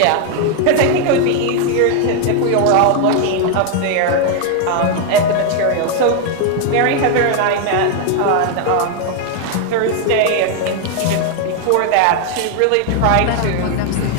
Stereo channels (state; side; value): different; both; correlation 0.01